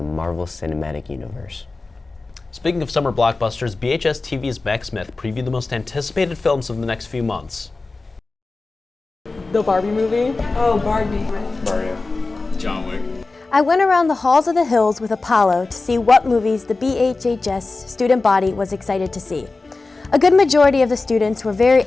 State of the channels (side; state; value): right; quieter; 3.6 dB